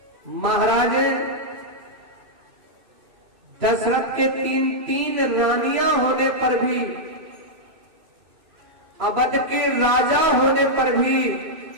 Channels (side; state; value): left; late; 2.6 ms